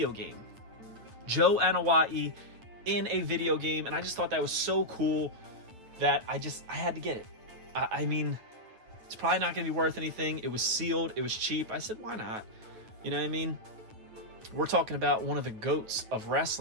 game. Joe Anoa'i in a video game. And I just thought that was so cool that I had to get it. I mean, it's probably not going to be worth anything. It was sealed. It was cheap. I said, why not? You know what I mean? We're talking about one of the GOATs of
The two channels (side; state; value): left; late; 9.1 ms